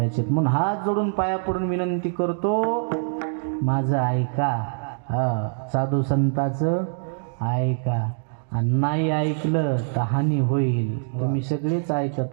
म्हणून हात जोडून पाया पडून विनंती करतो, माझं ऐका. साधू संताचं ऐका, आणि नाही ऐकलं तर हानी होईल. तुम्ही सगळेच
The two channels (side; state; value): left; silent; digital silence